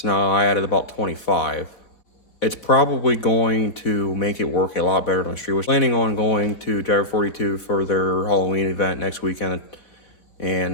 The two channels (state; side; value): late; right; 4.0 ms